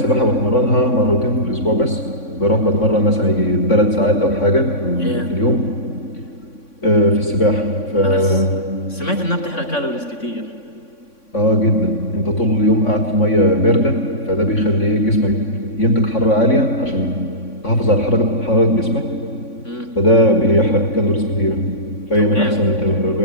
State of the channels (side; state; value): right; late; 3.6 ms